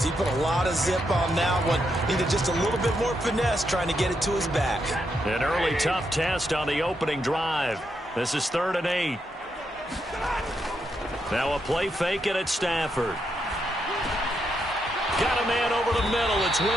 He put a lot of zip on that one. Needed just a little bit more finesse trying to get it to his back. An early tough test on the opening drive. This is 3rd and 8. Now a play fake it at Stafford. Got a man over the middle. It's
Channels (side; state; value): both; normal; correlation 0.81